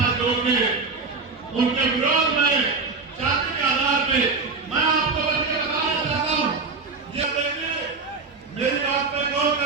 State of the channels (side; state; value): left; quieter; 4.2 dB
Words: जोड़ के उनके विरोध में जाति के आधार पे मैं आपको बल्कि बताना चाहता हूँ, ये देखिए मेरी बात पे गौर